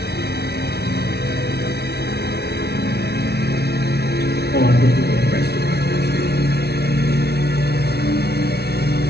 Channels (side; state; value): right; late; 0.48 ms